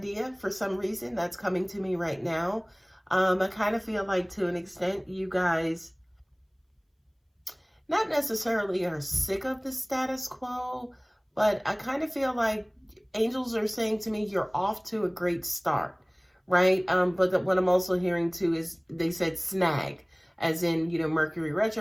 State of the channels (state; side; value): identical; both; correlation 1.00